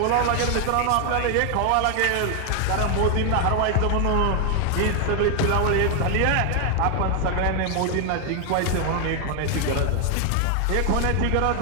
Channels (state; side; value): different; both; correlation 0.00